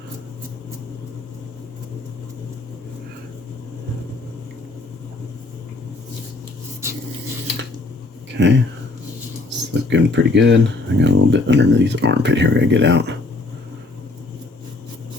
Okay, it's looking pretty good. I got a little bit underneath the armpit here. I gotta get out.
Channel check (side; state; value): right; quieter; 3.1 dB